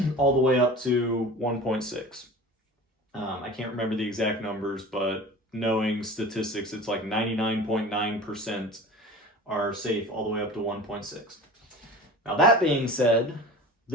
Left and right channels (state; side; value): normal; both; correlation 0.38